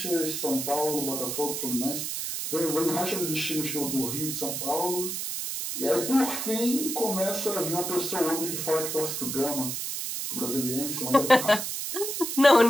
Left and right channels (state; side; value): noise; right; hiss, 3 dB below the sound